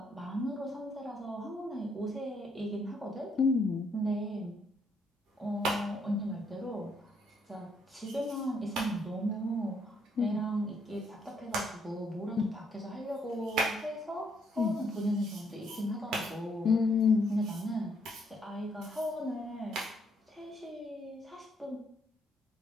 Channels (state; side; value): normal; both; correlation 0.71